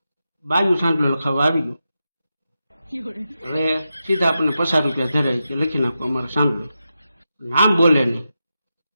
બાયું સાંજલો લખાવા આવી ગયું. હવે સીધા આપણને 50 રૂપિયા ધરાય કે લખી નાખો અમારો સાંજલો, નામ બોલે નહીં.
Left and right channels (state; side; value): inverted; both; correlation -0.89